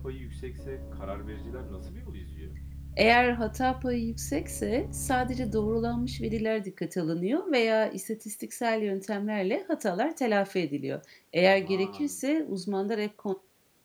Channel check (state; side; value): identical; both; correlation 1.00